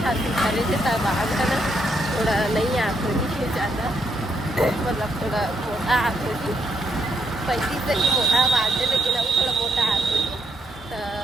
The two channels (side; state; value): both; normal; correlation 0.76